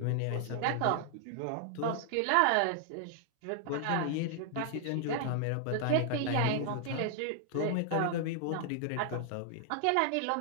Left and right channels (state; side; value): different; both; correlation 0.00